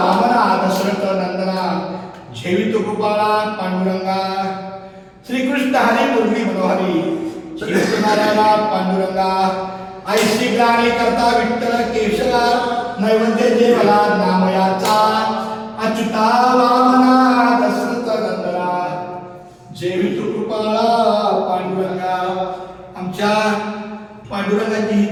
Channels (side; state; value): both; identical; correlation 1.00